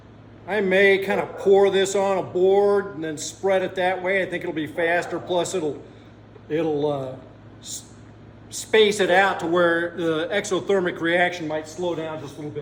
I may kind of pour this on a board and then spread it that way. I think it'll be faster. Plus it'll space it out to where the exothermic reaction might slow down just a little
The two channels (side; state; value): both; identical; correlation 1.00